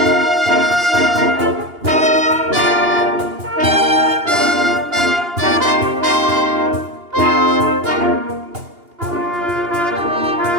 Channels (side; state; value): left; late; 2.8 ms